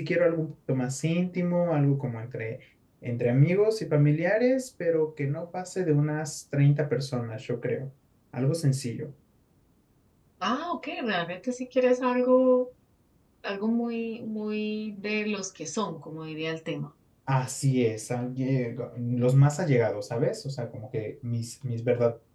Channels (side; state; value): both; identical; correlation 1.00